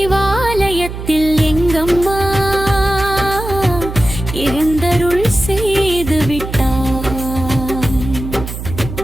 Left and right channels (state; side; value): noise; right; hum, 8 dB below the sound